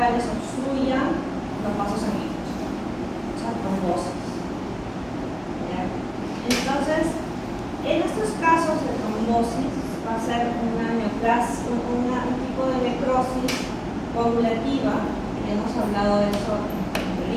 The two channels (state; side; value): identical; both; correlation 1.00